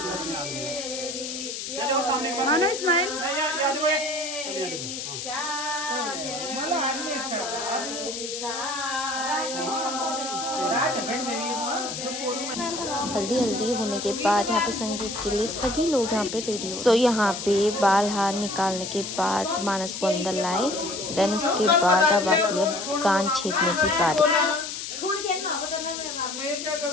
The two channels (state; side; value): noise; left; hiss, 6 dB below the sound